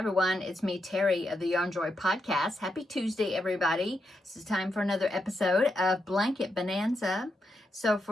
it's me Terri of the Yarn Joy podcast. Happy Tuesday everybody. This is time for another episode of Blanket Bonanza. So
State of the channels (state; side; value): normal; both; correlation 0.83